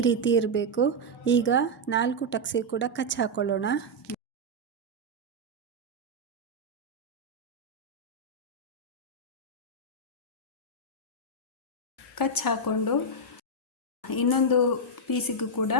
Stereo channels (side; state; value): both; normal; correlation -0.01